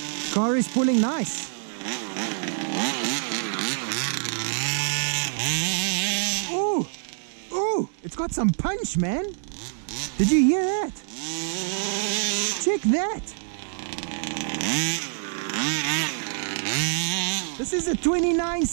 Car is pulling nice. Ooh, it's got some punch, man. Did you hear that? Check that. This is a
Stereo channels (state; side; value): silent; left; digital silence